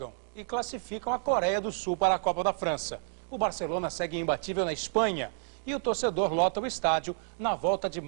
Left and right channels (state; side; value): silent; left; digital silence